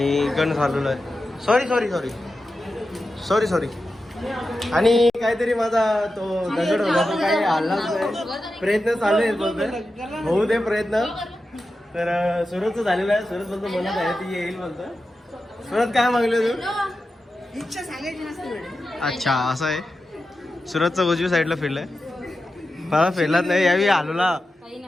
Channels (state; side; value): normal; both; correlation 0.91